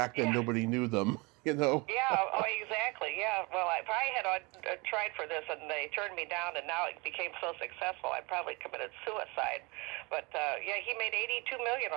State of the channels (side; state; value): left; quieter; 26.9 dB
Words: then nobody knew them, Yeah, exactly. Yeah. Well, if I had tried for this and they turned me down and now it became so successful, I probably committed suicide. But, he made $82 million